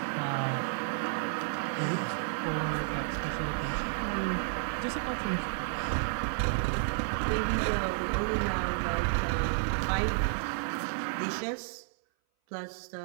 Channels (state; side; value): silent; left; 57 dB below the other